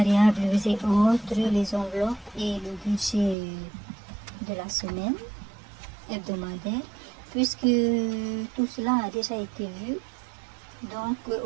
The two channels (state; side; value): drops out; left; at 3.4 s